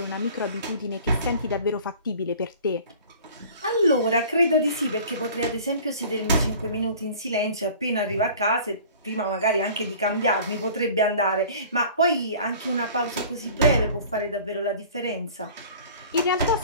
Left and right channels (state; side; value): inverted; both; correlation -0.46